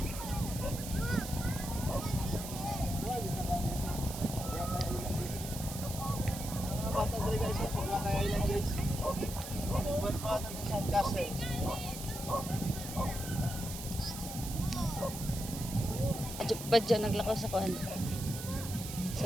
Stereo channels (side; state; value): right; noise; hiss, 9 dB below the sound